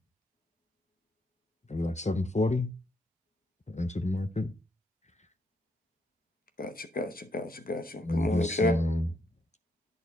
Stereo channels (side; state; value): both; normal; correlation 0.76